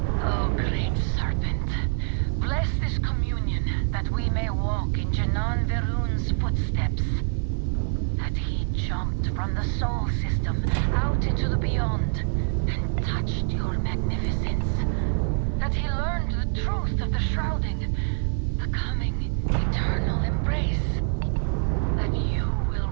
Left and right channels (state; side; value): silent; left; digital silence